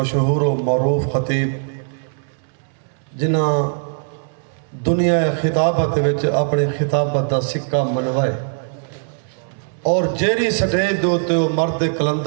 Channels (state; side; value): silent; left; digital silence